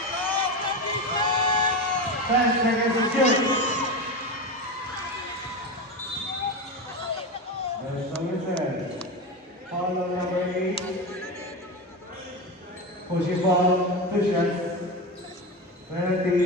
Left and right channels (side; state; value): both; normal; correlation 0.20